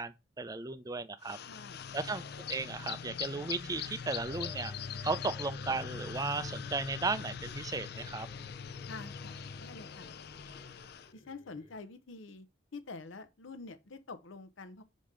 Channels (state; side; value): normal; both; correlation 0.21